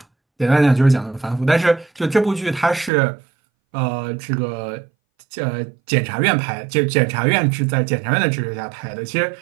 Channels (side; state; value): left; drops out; at 2.9 s